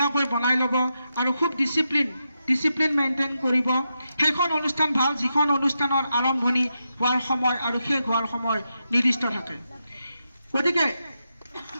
বনাই ল'ব, আৰু খুব ডিচিপ্লিন মেইনটেইন কৰিব। সেইখন অনুষ্ঠান ভাল যিখন অনুষ্ঠানৰ আৰম্ভণি হোৱাৰ সময় আৰু শেষ হোৱাৰ সময় নিৰ্দিষ্ট থাকে। গতিকে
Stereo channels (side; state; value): both; inverted; correlation -0.86